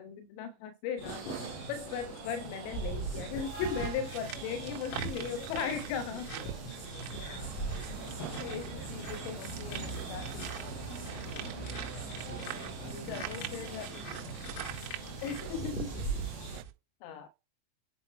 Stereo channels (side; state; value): right; late; 33 ms